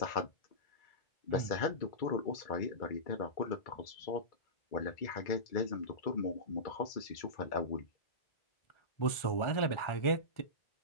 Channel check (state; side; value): late; right; 1.4 ms